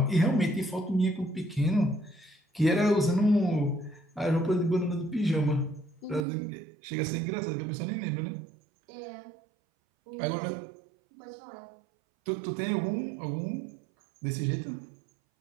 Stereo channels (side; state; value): left; drops out; at 6.2 s